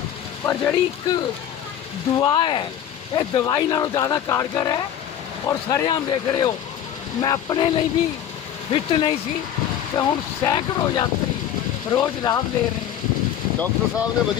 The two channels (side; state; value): right; quieter; 10.1 dB